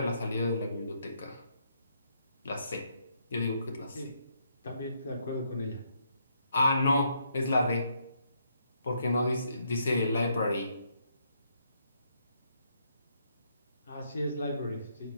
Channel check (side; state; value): both; inverted; correlation -0.74